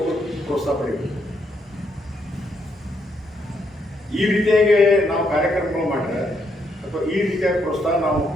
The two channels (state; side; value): normal; both; correlation 0.76